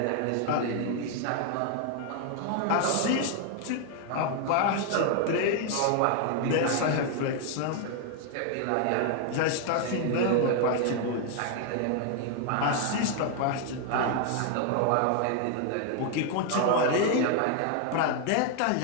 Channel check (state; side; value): different; both; correlation 0.00